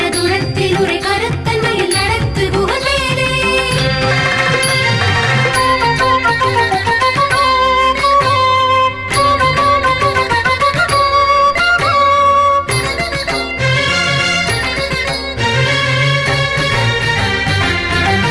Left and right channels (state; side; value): noise; right; hum, 26 dB below the sound